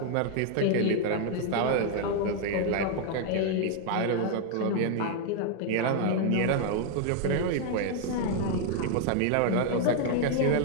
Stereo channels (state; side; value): different; both; correlation 0.00